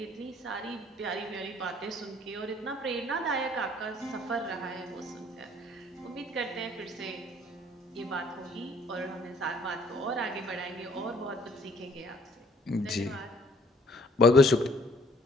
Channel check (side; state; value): both; normal; correlation 0.60